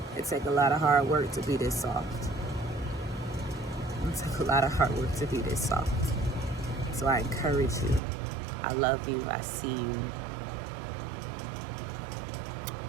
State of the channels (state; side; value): drops out; left; at 8.0 s